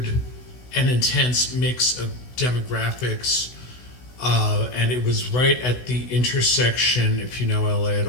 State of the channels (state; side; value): late; right; 16 ms